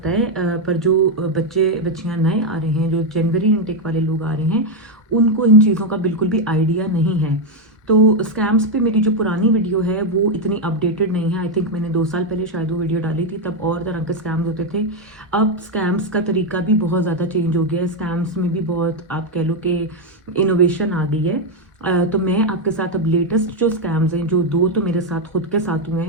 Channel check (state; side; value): normal; both; correlation 0.03